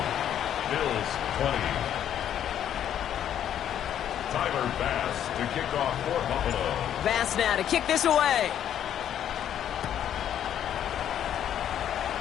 Bills 20. Tyler Bass to kick off for Buffalo. Bass now to kick this away.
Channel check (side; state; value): right; quieter; 10.1 dB